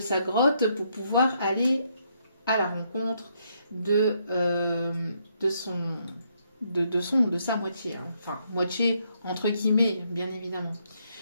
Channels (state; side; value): inverted; both; correlation -0.74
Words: grotte pour pouvoir aller à la rencontre de sa moitié. Hein. Enfin, moitié entre guillemets, bien évidemment.